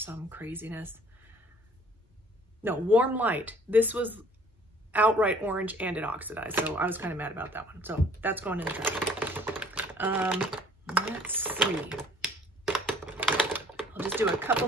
craziness. No, Warm Light. This was outright orange and it oxidized. So I was kind of mad about that one. So that's going in the trash. Let's see. I'll just do a couple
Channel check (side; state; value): both; normal; correlation 0.54